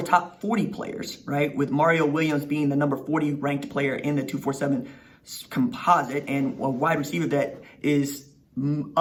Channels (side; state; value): both; identical; correlation 1.00